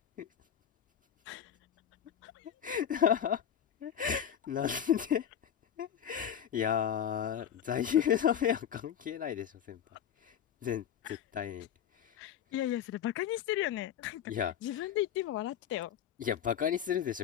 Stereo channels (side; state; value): right; quieter; 9.4 dB